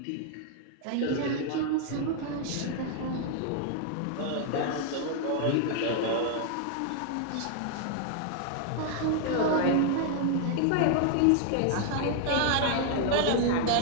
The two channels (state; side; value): different; both; correlation 0.00